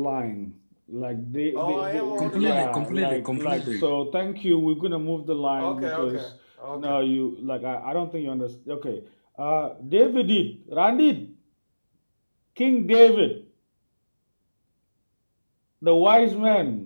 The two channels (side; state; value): both; inverted; correlation -1.00